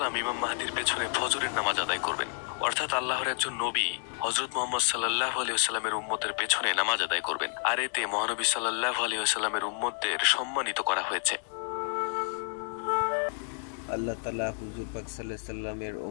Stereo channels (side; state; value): right; silent; 58 dB below the other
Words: ইমাম মাহদীর পেছনে ফজরের নামাজ আদায় করবেন। অর্থাৎ আল্লাহর একজন নবী হযরত মুহাম্মদ সাল্লাল্লাহু আলাইহি ওয়াসাল্লামের উম্মতের পেছনে নামাজ আদায় করবেন। আর এতে মহানবী সাল্লাল্লাহু আলাইহি ওয়াসাল্লামের উম্মতদের সম্মানিত করা হয়েছে। আল্লাহ তাআলা হুজুর পাক সাল্লাল্লাহু আলাইহি ওয়াসাল্লামের